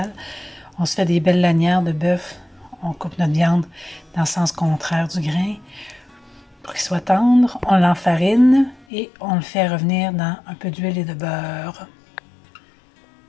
On se fait des belles lanières de bœuf. On coupe notre viande dans le sens contraire du grain pour qu'il soit tendre. On l'enfarine et on le fait revenir dans un peu d'huile et de beurre.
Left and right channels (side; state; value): right; drops out; at 8.8 s